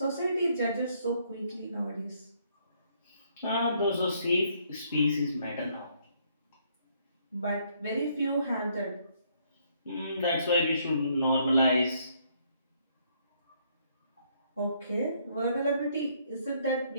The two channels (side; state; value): both; inverted; correlation -0.69